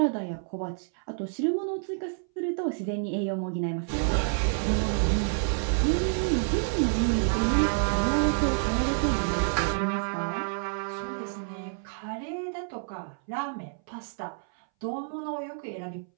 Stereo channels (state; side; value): silent; left; 59 dB below the other